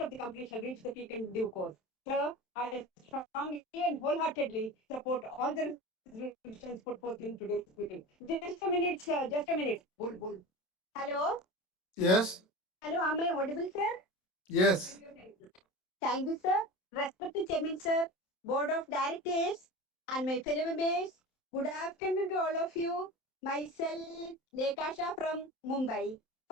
the company shall reach the peak in due course. Sir, I strongly and wholeheartedly support all the resolutions put forth in today's meeting. Just a minute, sir. Just a minute. Hello. Yes. Hello. Am I audible, sir? Yes. Thank you, sir. Respected Chairman, sir, Board of Directors, and my fellow members. Good afternoon to all of you. Myself, Lekasha from Mumbai.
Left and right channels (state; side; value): late; right; 27 ms